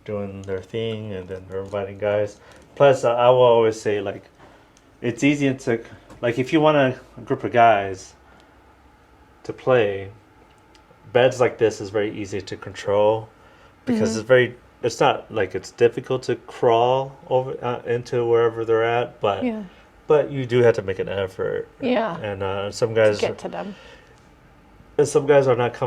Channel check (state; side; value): identical; both; correlation 1.00